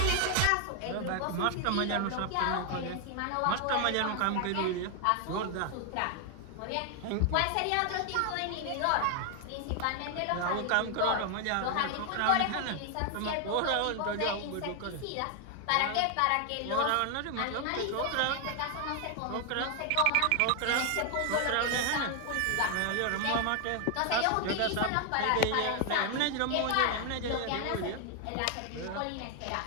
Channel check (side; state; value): both; different; correlation 0.00